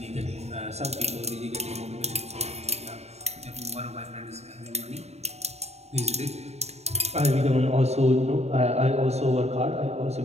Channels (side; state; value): left; late; 0.31 ms